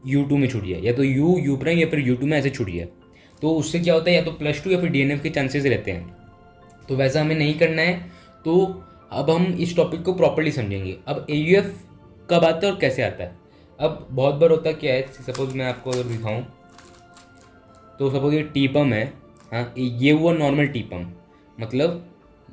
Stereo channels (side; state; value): both; identical; correlation 1.00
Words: U2 में छूट जाए, या तो U प्राइम या फिर U2 में ऐसे छूट जाए। तो उससे क्या होता है, या तो +2 या फिर DNF के चांसेस रहते हैं। तो वैसा हमें नहीं करना है। तो अब हम इस टॉपिक को प्रॉपर्ली समझेंगे। अब AUF कब आता है और कैसे आता है। अब बहुत बार होता क्या है, सपोज मैं आपको अगर दिखाऊं, तो सपोज ये टीपम है, हाँ, ये हुआ नॉर्मल टीपम, मतलब